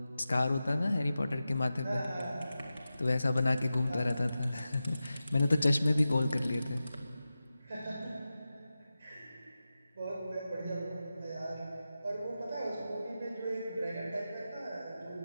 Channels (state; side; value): inverted; both; correlation -0.93